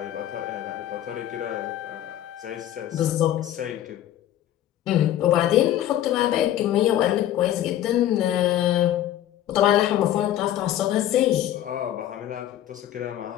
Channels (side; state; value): right; quieter; 12.3 dB